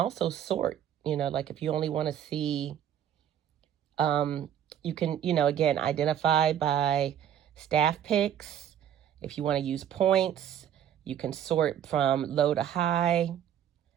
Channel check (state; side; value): quieter; left; 9.9 dB